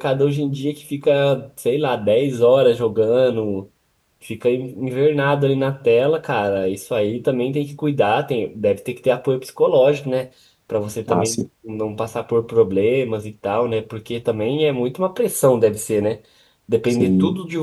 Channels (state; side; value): identical; both; correlation 1.00